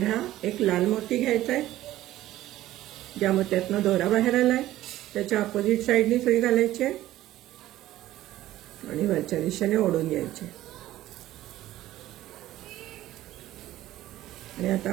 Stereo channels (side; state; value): left; quieter; 14.7 dB